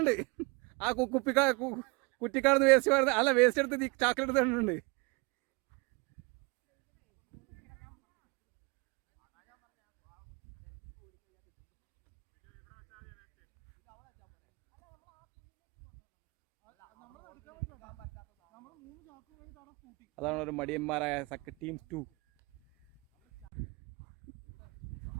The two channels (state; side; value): quieter; left; 27.8 dB